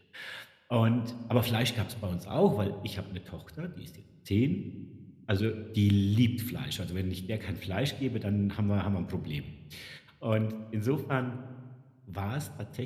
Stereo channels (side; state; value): both; identical; correlation 1.00